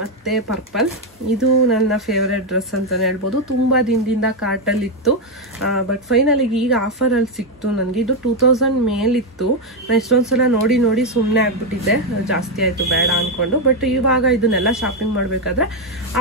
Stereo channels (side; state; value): both; normal; correlation 0.05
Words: ಪರ್ಪಲ್. ಇದು ನನ್ನ ಫೇವ್ರೆಟ್ ಡ್ರೆಸ್ ಅಂತಲೇ ಹೇಳ್ಬೋದು. ತುಂಬ ದಿನದಿಂದ ಕಾರ್ಟಲ್ಲಿತ್ತು, ಬಟ್ ಫೈನಲಿಗೆ ಈಗ ಆಫರಲ್ಲಿ ಸಿಕ್ತು ನನಗೆ. ಇದು 2000 ಮೇಲಿತ್ತು. ನಾನು ಎಷ್ಟೊಂದು ಸಲ ನೋಡಿ ಸುಮ್ಮನೆ ಆಗ್ಬಿಟ್ಟಿದ್ದೆ, ಜಾಸ್ತಿ ಆಯಿತು ಬೇಡ ಅಂದ್ಕೊಂಡು. ಬಟ್ ಇವಾಗ ಇದನ್ನೆಲ್ಲ ಶಾಪಿಂಗ್ ಮಾಡಬೇಕಾದ್ರೆ